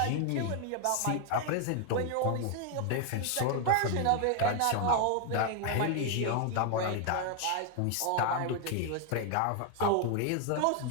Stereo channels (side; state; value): both; different; correlation 0.00